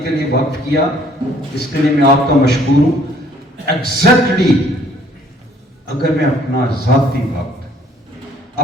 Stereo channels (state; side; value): normal; both; correlation 0.60